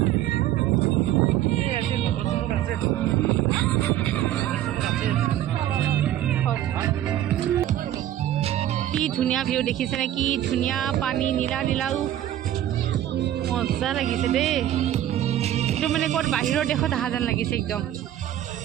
কি ধুনীয়া ভিউ দেখিছেনে কি ধুনীয়া পানী নীলা নীলাও মজা লাগিছে দেই এইটো মানে ক'ত বাহিৰৰ দেশত অহা যেন লাগিছে একদম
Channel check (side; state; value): left; quieter; 12.4 dB